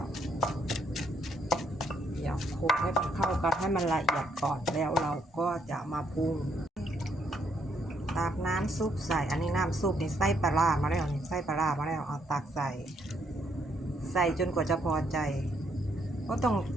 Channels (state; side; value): normal; both; correlation 0.72